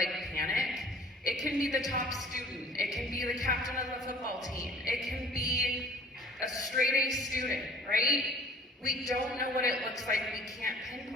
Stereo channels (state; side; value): normal; both; correlation 0.50